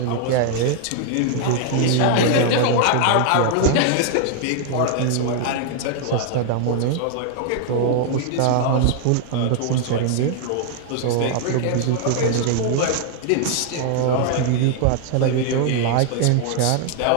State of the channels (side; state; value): both; different; correlation 0.00